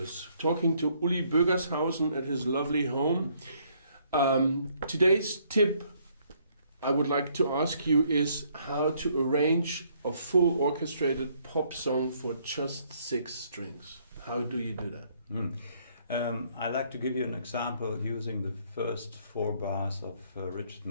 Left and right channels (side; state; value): both; inverted; correlation -0.67